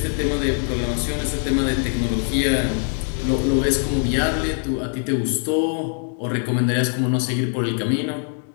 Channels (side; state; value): right; silent; 57 dB below the other